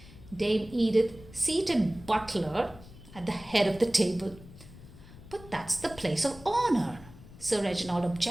Dame Edith seated Butler at the head of the table. But that's the place of honor, Sir Reginald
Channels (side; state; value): left; noise; rumble, 19 dB below the sound